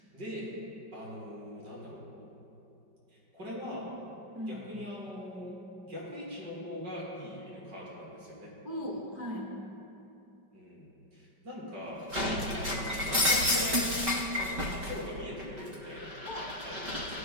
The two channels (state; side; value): late; left; 5.2 ms